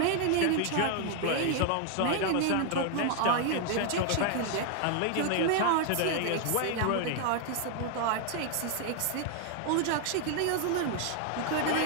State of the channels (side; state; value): both; different; correlation 0.00